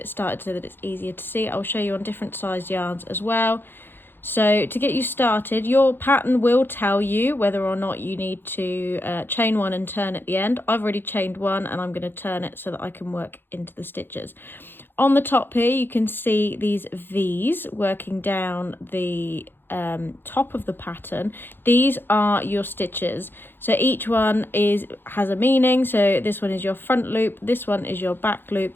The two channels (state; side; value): late; right; 0.10 ms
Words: started so that it's easier to see. I'll show you on different size yarns as well. So to get you started, your pattern will tell you whether or not you need to chain one and turn at the end. I've already chained one and I'm going to turn it so that I can work into the stitches. On the top here you can see these V's working down the top of the pattern. These are your stitches, so each one has a meaning. So this one is your front loop, this one is your back